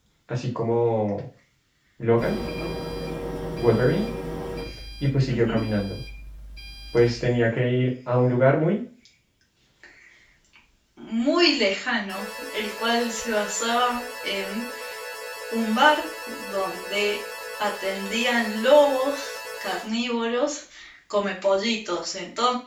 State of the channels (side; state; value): both; identical; correlation 1.00